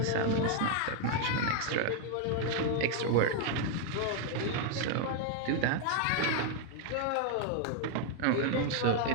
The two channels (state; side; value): different; both; correlation 0.00